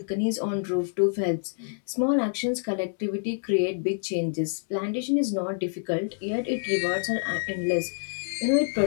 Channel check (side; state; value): right; silent; 60 dB below the other